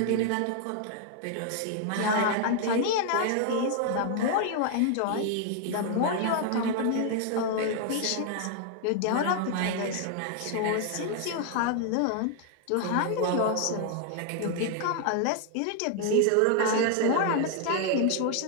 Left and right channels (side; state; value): both; different; correlation 0.00